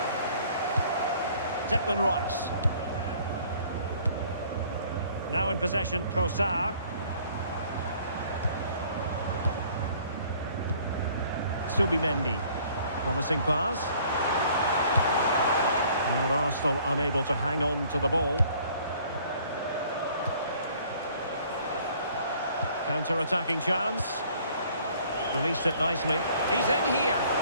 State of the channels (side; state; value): both; inverted; correlation -0.57